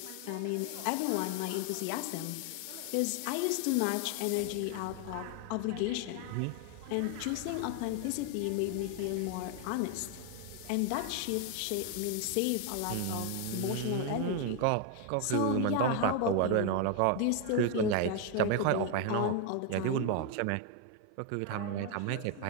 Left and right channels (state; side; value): different; both; correlation 0.01